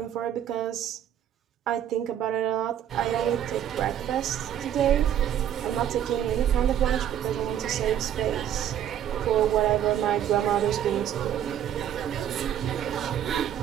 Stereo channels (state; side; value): quieter; left; 10.3 dB